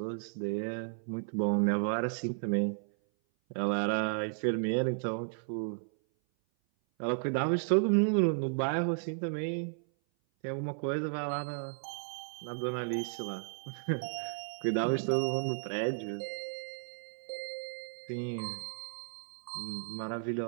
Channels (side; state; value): left; silent; 55 dB below the other